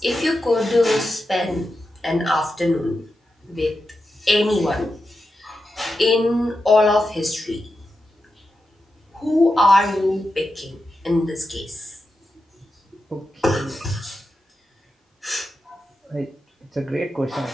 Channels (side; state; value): both; normal; correlation 0.89